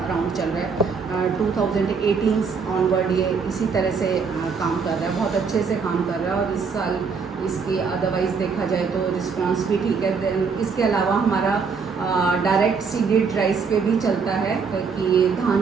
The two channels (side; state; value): left; quieter; 5.4 dB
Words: चल रहा है। 2018 ऑनवर्ड ये इसी तरह से काम कर रहा है, बहुत अच्छे से काम कर रहा है। और इस साल इसकी अदरवाइज़ देखा जाए तो रिस्पांस भी ठीक है। देन इसके अलावा हमारा डायरेक्ट सीडेड राइस पे भी चलता है कि